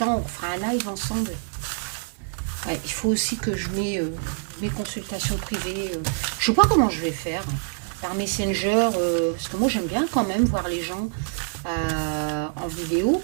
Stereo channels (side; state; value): left; silent; digital silence